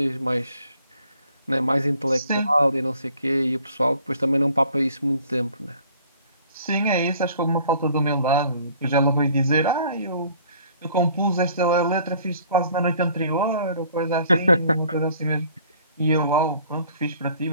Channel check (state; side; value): inverted; both; correlation -0.55